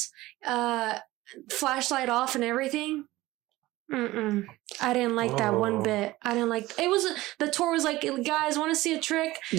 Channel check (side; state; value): left; quieter; 18.1 dB